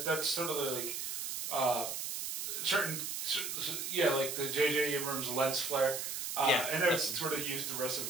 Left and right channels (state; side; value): noise; right; hiss, 3 dB below the sound